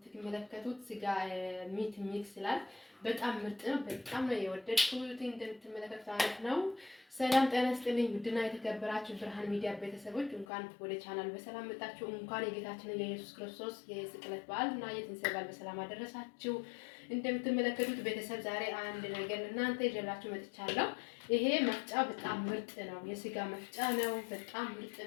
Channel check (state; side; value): drops out; right; at 10.5 s